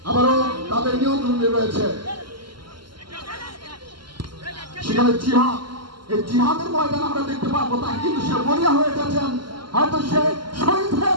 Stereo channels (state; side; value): late; left; 0.72 ms